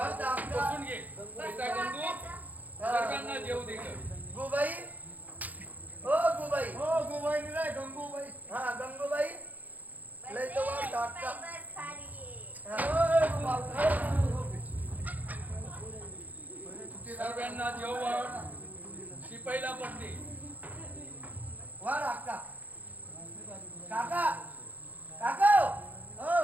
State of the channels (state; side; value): late; left; 0.080 ms